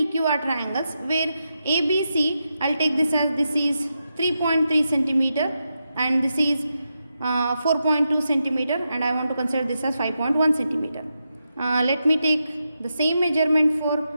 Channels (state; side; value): inverted; both; correlation -0.87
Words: are triangles, where ABC, I'll take this as this is 3.3 centimeter and this is 4.2 centimeter, and I want to consider this as 5.1 centimeter. Let me take the same measurement for